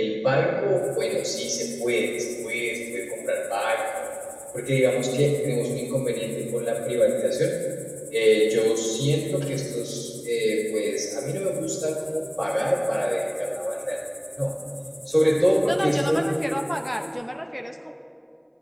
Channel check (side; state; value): both; identical; correlation 1.00